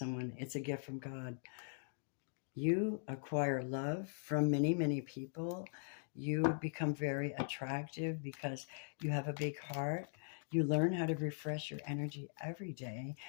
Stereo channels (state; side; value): silent; right; digital silence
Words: It's a gift from God. You acquire love from many, many people. You become very attractive because you have a big heart. You learn how to refresh your energy every day,